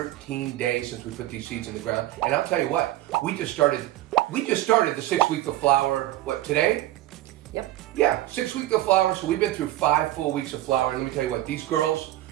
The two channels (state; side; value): quieter; left; 15.2 dB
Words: days since we put these seeds in the ground. And I'll tell you what, we just started the 6th week of flower. What, today? Yep. Yeah, 6th week of flower. So we've been through 5 full weeks of flower. And let me tell you what, these girls,